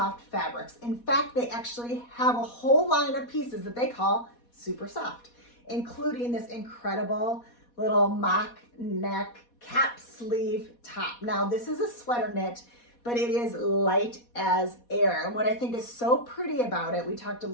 fabrics. In fact, they actually have a whole line of pieces that they call super soft, including this incredible little mock neck cap sleeve top. Now, this is a sweater knit, but it is light as air. And what I think is so pretty about it, we talked a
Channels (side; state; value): right; late; 4.2 ms